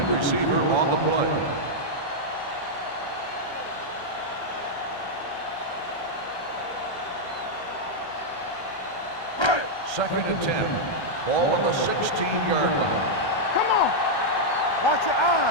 Receiver on the play. Second and 10. Ball on the 16-yard line. Come on. Watch your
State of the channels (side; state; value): right; late; 1.3 ms